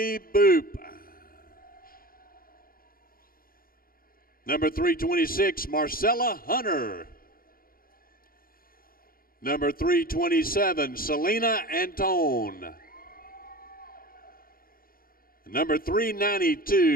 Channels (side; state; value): right; late; 0.42 ms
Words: Boop. Number 326, Marcella Hunter. Number 327, Selena Antone. Number